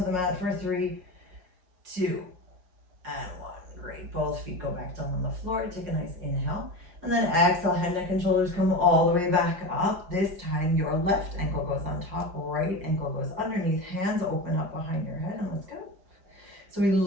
mat for 3, 2, and 1. Great, both feet go back down on the floor, take a nice inhale. And then exhale, head, neck, and shoulders come all the way back up. This time, your left ankle goes on top, right ankle goes underneath, hands open up behind your head, and let's go. So we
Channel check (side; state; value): left; late; 5.5 ms